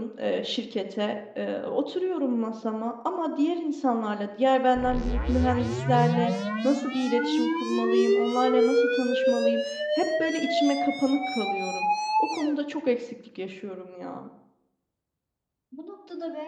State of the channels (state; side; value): identical; both; correlation 1.00